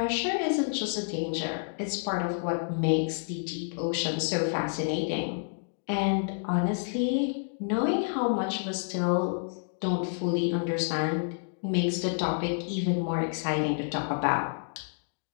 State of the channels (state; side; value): silent; right; digital silence